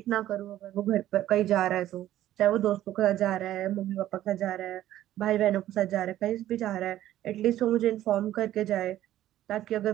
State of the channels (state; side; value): quieter; left; 13.3 dB